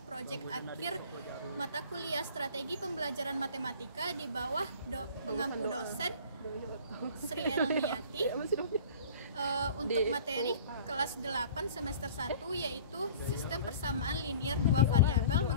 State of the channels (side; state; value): both; inverted; correlation -0.45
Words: proyek akhir mata kuliah Strategi Pembelajaran Matematika di bawah pengampu dosen Sri Elmiati. Untuk materi kelas 8 semester 1 yaitu sistem persamaan linear dua variabel